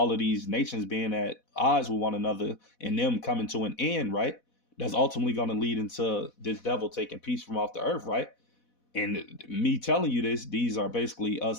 of these nations being at odds with one another and them coming to an end, right? That's ultimately going to lead into this devil taking peace from off the earth, right? And me telling you this, these are basically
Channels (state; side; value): late; right; 4.1 ms